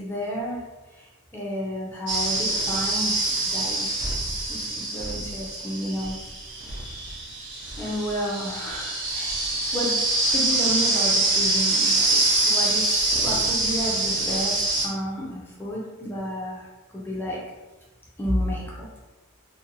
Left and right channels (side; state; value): both; normal; correlation 0.23